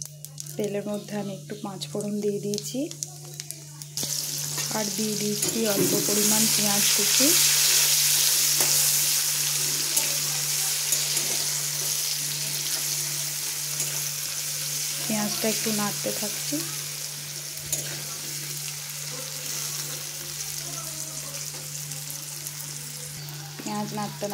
তেলের মধ্যে আমি একটু পাঁচ ফোড়ন দিয়ে দিয়েছি, আর দিয়ে দিয়েছি অল্প পরিমাণ পেঁয়াজ কুচি। পেঁয়াজটা একটু নাড়তে থাকছি। পেঁয়াজ নাড়তে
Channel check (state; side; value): identical; both; correlation 1.00